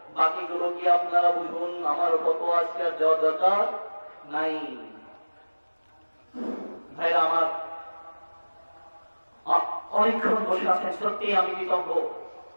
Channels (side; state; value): both; inverted; correlation -1.00